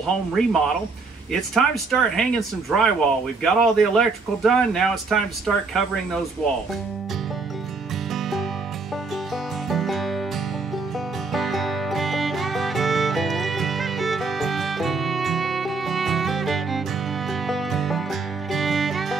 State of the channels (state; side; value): quieter; left; 4.2 dB